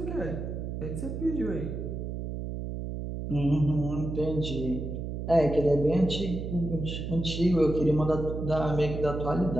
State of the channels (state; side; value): noise; right; hum, 5 dB below the sound